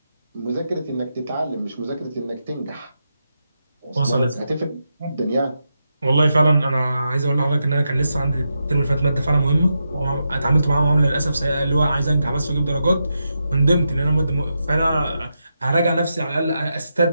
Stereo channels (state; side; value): inverted; both; correlation -0.86